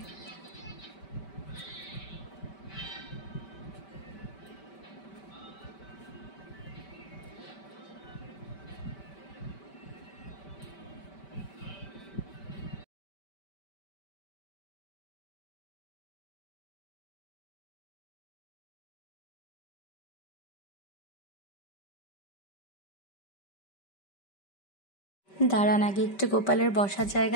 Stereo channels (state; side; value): late; right; 5.1 ms